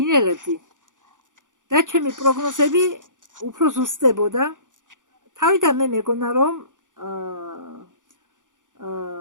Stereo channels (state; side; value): late; left; 0.87 ms